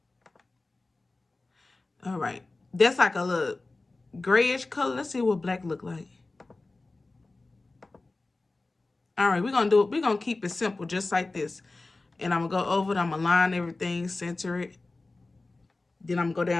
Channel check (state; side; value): quieter; right; 3.3 dB